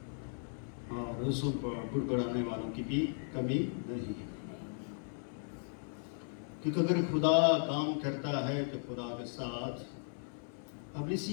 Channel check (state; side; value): silent; right; 53 dB below the other